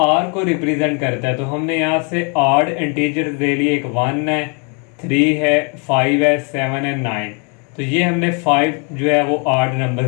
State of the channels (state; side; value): quieter; right; 35.6 dB